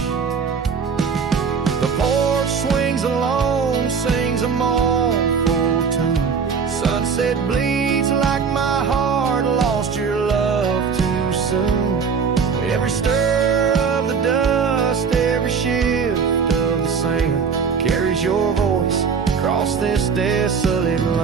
The porch swings alone, sings a mournful tune. Sunset bleeds like my heart lost your love too soon. Every stir of the dust, every shift of the sand carries your voice across this desolate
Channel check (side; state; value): left; quieter; 5.9 dB